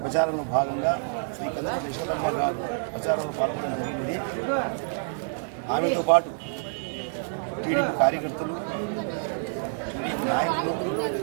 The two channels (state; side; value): silent; left; digital silence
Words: ప్రచారంలో భాగంగా శ్రీ కందుకుంట యశోదమ్మ గారు ప్రచారంలో పాల్గొనడం జరిగినది. ఆమెతో పాటు టీడీపీ కార్యకర్తలు, టీడీపీ నాయకులు